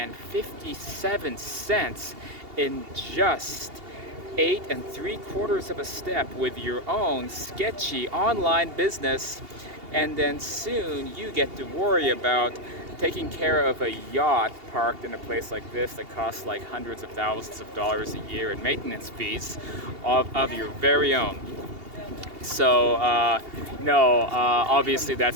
cents in just 8 3/4 of a step with your own sketchy online business. And then soon you get to worry about taking care of a yacht parked in a place like this that costs like hundreds of thousands of dollars a year in maintenance fees of your very own. So no, obviously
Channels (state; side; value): late; left; 2.8 ms